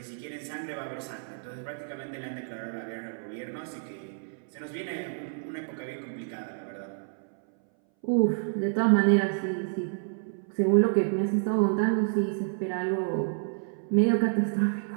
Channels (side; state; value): left; silent; 58 dB below the other